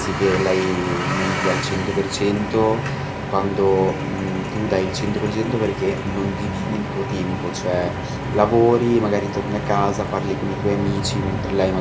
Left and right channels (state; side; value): identical; both; correlation 1.00